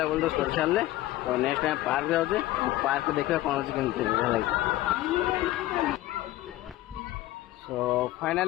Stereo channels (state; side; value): quieter; right; 16.0 dB